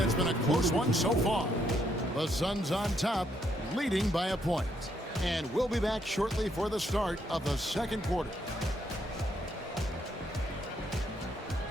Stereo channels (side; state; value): both; normal; correlation 0.74